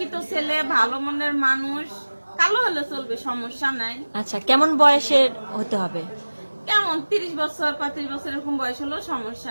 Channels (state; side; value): inverted; both; correlation -1.00